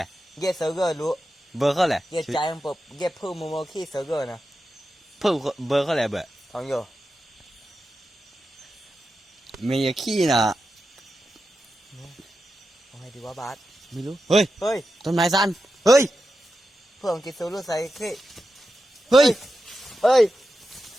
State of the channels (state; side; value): normal; both; correlation 0.90